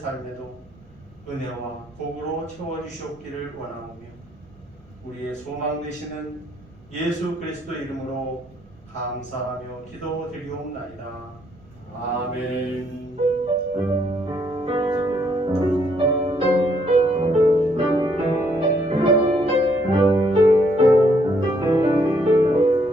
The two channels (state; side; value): noise; right; rumble, 27 dB below the sound